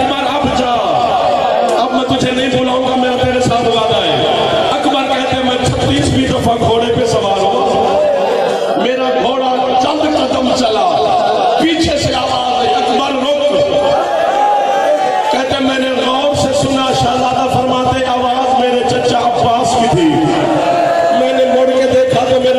अब जा, अब मैं तुझे नहीं बुलाऊंगा, मेरा तेरे साथ वादा है। अकबर कहते मैं 36वीं दफा घोड़े पे सवार हुआ, मेरा घोड़ा चंद कदम चला, पीछे से आवाज आई अकबर रुक। कहते मैंने गौर से सुना, शहजादा फरमाते आवाज मेरे चचा अब्बास की थी। मैंने मुड़ के देखा तो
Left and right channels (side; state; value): both; identical; correlation 1.00